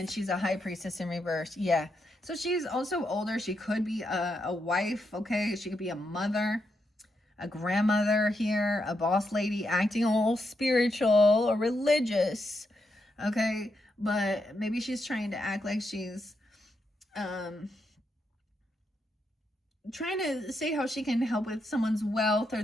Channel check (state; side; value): normal; both; correlation 0.82